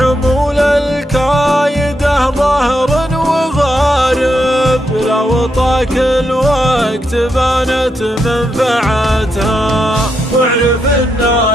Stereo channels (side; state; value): both; normal; correlation 0.82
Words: الكايده ظهر وغارب، لو طاك الوقت بانت منفعتها. واعرف